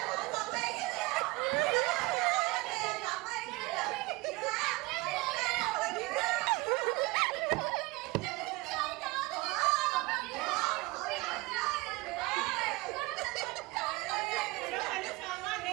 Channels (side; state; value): left; quieter; 22.8 dB